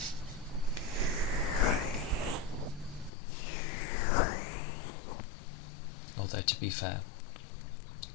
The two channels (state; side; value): drops out; right; at 3.1 s